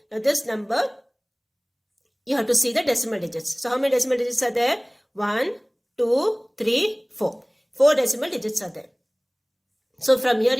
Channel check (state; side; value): identical; both; correlation 1.00